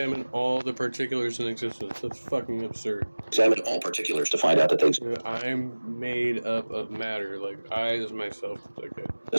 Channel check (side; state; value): both; inverted; correlation -1.00